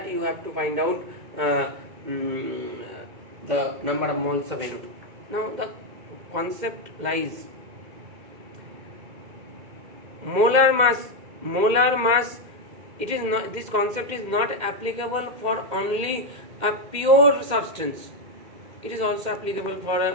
you have to find out the number of moles of NO2. Now the concept lies. Molar mass. It is not, this concept is not applicable for only a pure substance. It is also applicable for a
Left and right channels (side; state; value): left; late; 2.1 ms